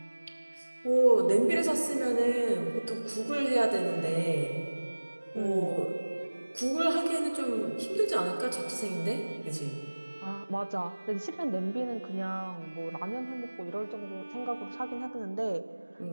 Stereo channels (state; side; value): inverted; both; correlation -1.00